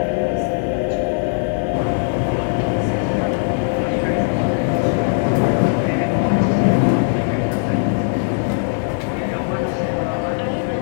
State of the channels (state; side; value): silent; right; digital silence